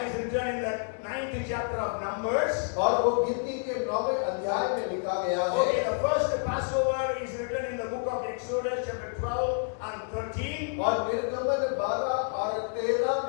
is written in the 9th chapter of Numbers. और वो गिनती के 9वें अध्याय में लिखा गया है। Okay, the first Passover is written in the book of Exodus chapter 12 and 13. और निर्गमन 12 और 13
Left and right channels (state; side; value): silent; right; 59 dB below the other